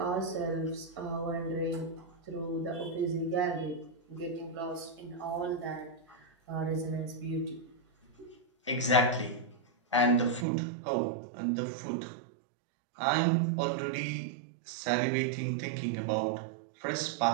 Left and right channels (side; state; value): left; drops out; at 10.5 s